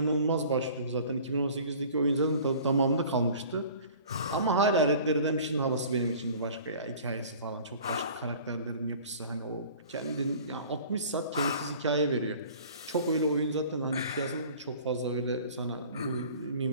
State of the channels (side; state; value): both; inverted; correlation -0.46